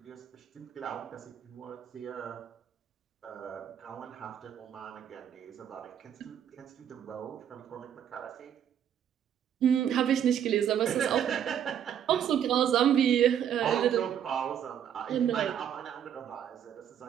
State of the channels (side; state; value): left; quieter; 9.3 dB